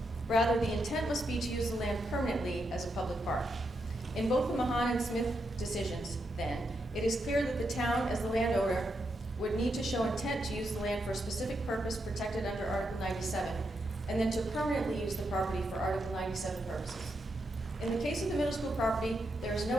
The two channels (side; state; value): both; normal; correlation 0.83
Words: Rather, the intent must be to use the land permanently as a public park. In both the Mahan and Smith decisions, then, it is clear that the town, as the landowner, would need to show intent to use the land for a specific purpose protected under Article 97, and then to permanently use the property for Article 97 purposes. In the case of the middle school property, there is